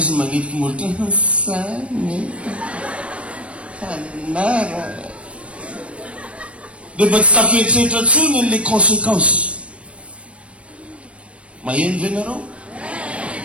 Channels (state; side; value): late; left; 0.061 ms